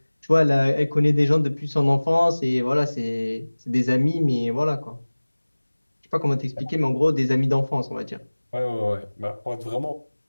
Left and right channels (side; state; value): both; inverted; correlation -1.00